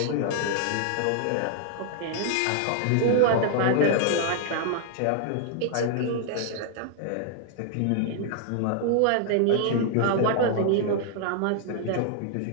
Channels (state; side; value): different; both; correlation -0.01